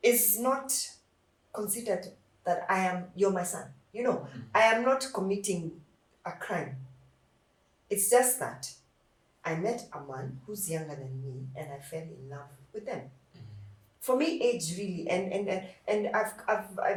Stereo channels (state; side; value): identical; both; correlation 1.00